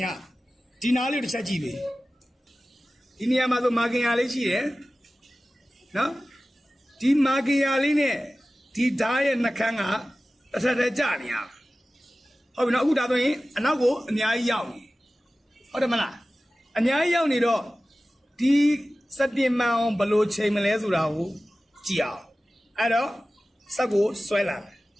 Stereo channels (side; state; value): both; normal; correlation 0.96